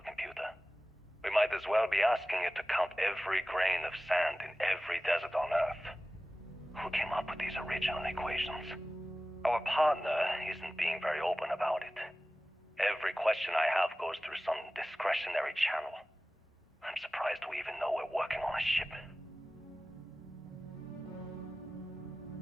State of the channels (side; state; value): both; normal; correlation 0.96